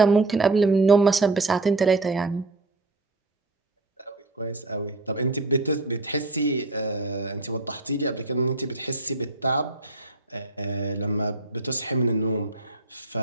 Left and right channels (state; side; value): quieter; left; 3.1 dB